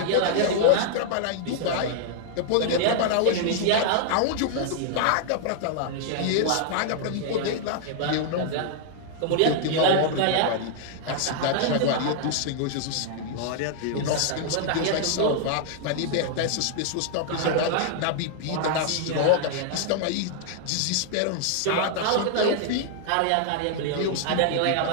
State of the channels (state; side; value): different; both; correlation -0.01